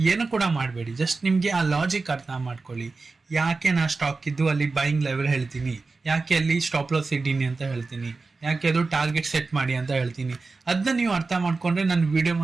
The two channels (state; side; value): quieter; left; 3.9 dB